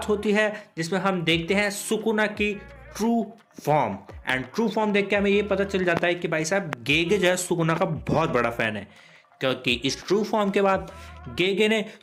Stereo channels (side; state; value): both; identical; correlation 1.00